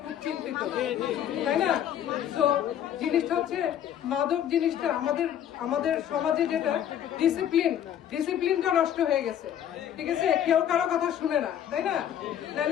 খুব চিন্তিত, তাই না? তো জিনিসটা হচ্ছে মাদক জিনিসটা আমাদের সমাজে যেটা ডিসিপ্লিনটা নষ্ট হয়ে গেছে, ঠিক আছে? কেউ কারো কথা শুনে না, তাই না?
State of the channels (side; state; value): right; quieter; 10.2 dB